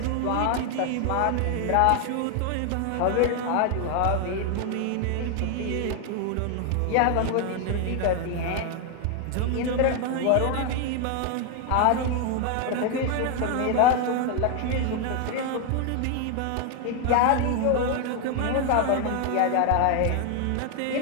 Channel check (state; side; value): different; both; correlation 0.01